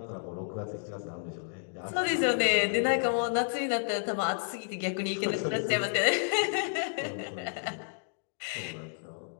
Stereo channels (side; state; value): right; silent; digital silence